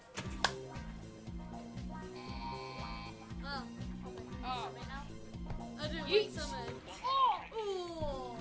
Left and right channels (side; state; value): both; identical; correlation 1.00